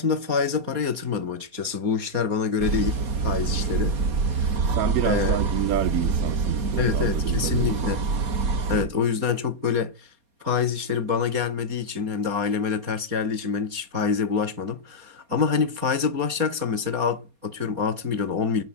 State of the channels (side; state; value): left; late; 4.2 ms